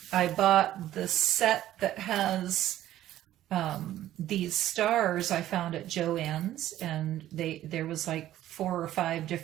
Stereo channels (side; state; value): left; quieter; 13.3 dB